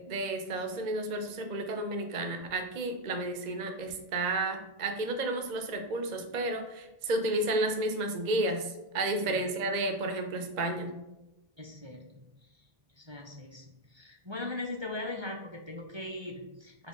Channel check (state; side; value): late; left; 2.0 ms